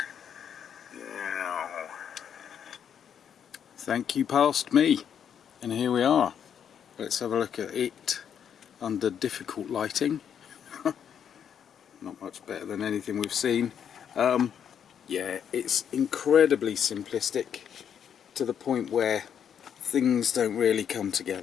Now. Thank you past me. And here we are. Let's have a look at it under difficult lighting. Not much better than anything we've seen. Yeah, it's incredibly simplistic to the point where things don't really come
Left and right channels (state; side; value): quieter; right; 8.4 dB